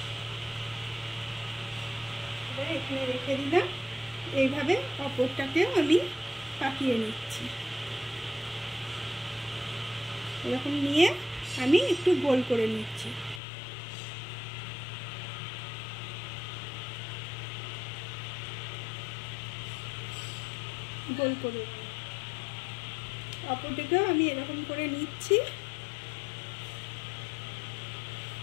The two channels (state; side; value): drops out; right; at 13.4 s